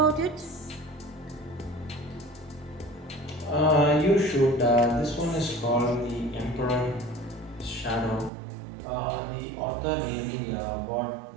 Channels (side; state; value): left; drops out; at 8.3 s